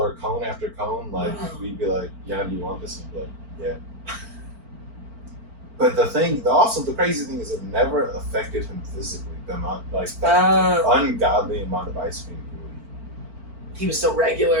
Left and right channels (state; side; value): late; left; 4.4 ms